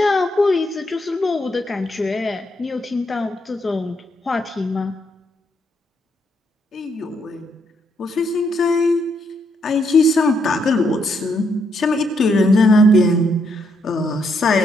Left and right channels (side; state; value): both; normal; correlation 0.76